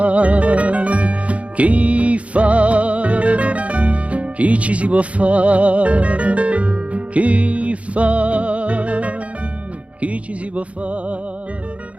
chi fa, chi ci si può fare, chi fa, chi ci si può fare,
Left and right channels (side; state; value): left; late; 0.064 ms